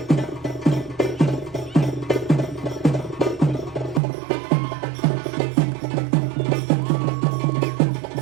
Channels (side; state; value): left; drops out; at 4.0 s